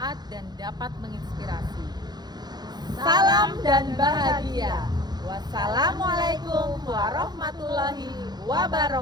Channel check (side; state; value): left; late; 0.20 ms